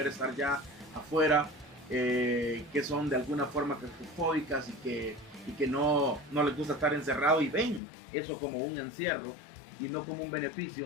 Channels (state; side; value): drops out; right; at 7.8 s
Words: estar ya afuera, que son de alguna forma claustrofóbicas y que no les gusta estar encerrado, y ven eso como un encierro y no como un